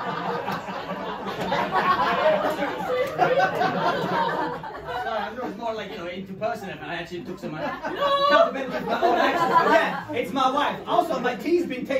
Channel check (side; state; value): both; identical; correlation 1.00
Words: It was more like, interpersonal. I actually took some accountability of my own actions. But yeah, it's my wife. Also, my tea's been